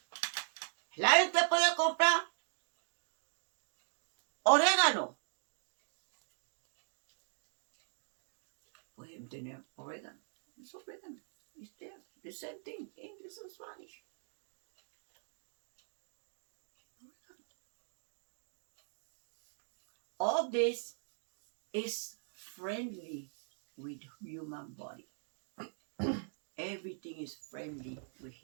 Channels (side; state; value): left; silent; digital silence